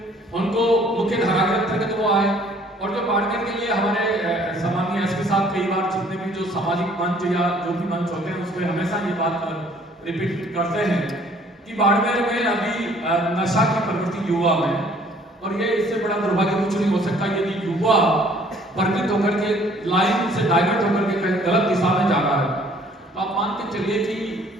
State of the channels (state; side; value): normal; both; correlation 0.58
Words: उनको मुख्य धारा के अंतर्गत वो आए, और जो बाड़मेर के लिए हमारे सामान्य एसपी साहब कई बार जितने भी जो सामाजिक मंच या जो भी मंच होते हैं उसमें हमेशा ये बात रिपीट करते हैं कि बाड़मेर में अभी नशा की प्रवृत्ति युवा में, और ये इससे बड़ा दुर्भाग्य कुछ नहीं हो सकता यदि युवा वर्गित होकर के लाइन से डाइवर्ट होकर के कहीं गलत दिशा में जा रहा है। तो आप मान के चलिए कि